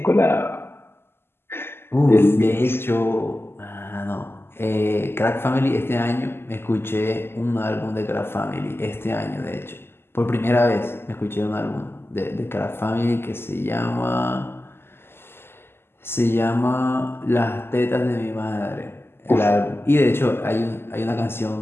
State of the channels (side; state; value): right; late; 0.12 ms